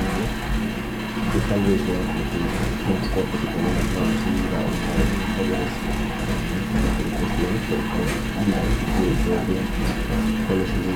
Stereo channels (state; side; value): identical; both; correlation 1.00